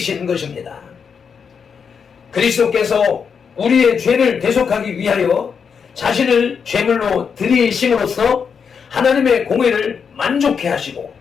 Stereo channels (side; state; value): right; quieter; 6.4 dB